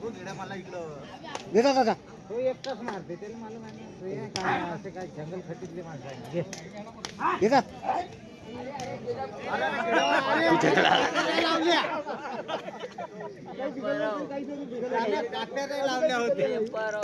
तो घेडा मला इकडं देता दादा तो एकटाच मारते त्याला मला माहिती नाही. काय असे काय जंगल खटीतले माणसं आहे. घे देता लावल्या होते. पेपर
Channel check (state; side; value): identical; both; correlation 1.00